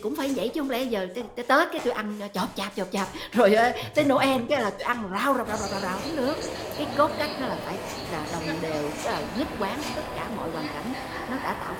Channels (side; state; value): both; identical; correlation 1.00